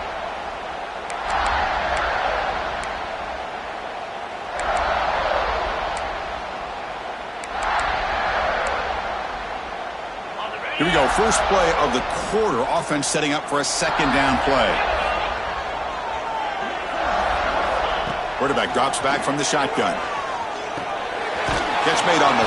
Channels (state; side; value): identical; both; correlation 1.00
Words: Here we go, first play of the quarter. Offense setting up for a second down play. Quarterback drops back from the shotgun. Catch made on